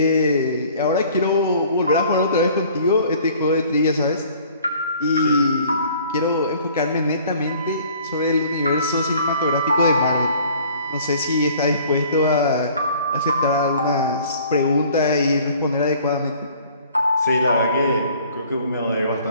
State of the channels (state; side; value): inverted; both; correlation -0.53